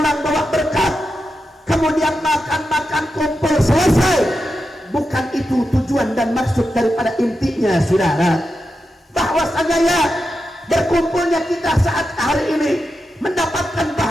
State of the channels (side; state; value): both; normal; correlation 0.88